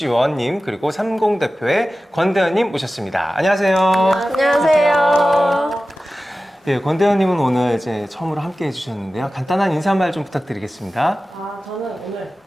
그리고 30 대표의 권대현님 모셨습니다. 안녕하세요. 안녕하세요. 예, 권대현님은 오늘 이제 처음으로 함께 해주셨는데요. 간단한 인사말 좀 부탁드리겠습니다. 저는 오늘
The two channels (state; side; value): normal; both; correlation 0.95